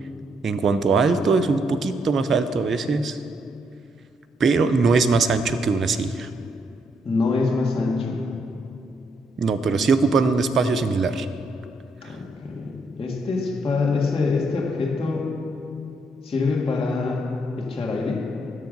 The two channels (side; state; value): both; normal; correlation 0.75